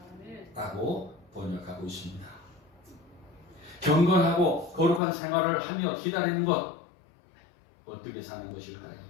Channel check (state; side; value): drops out; right; at 5.0 s